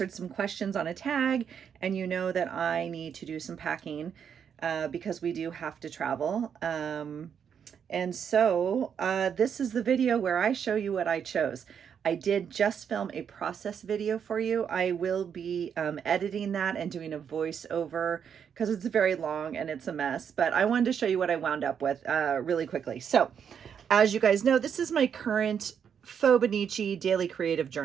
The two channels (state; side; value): quieter; left; 7.7 dB